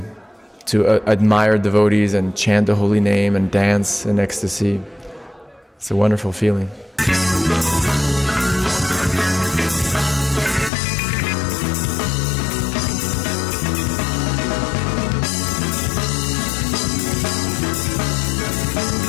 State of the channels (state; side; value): drops out; right; at 10.7 s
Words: admire devotees and chant the holy name and dance in ecstasy. It's a wonderful feeling.